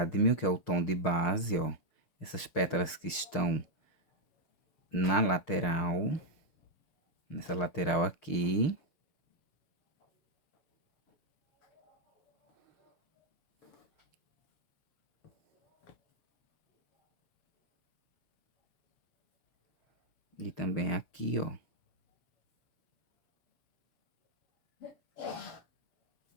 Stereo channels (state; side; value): late; right; 6.5 ms